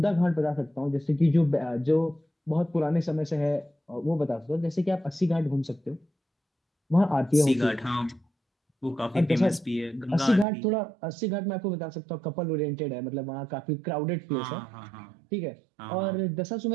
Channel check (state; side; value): drops out; left; at 10.5 s